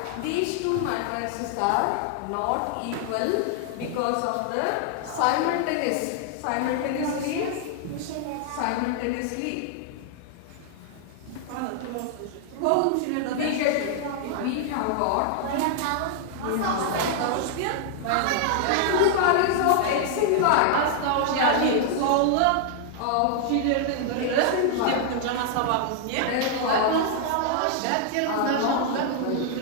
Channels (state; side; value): different; both; correlation 0.00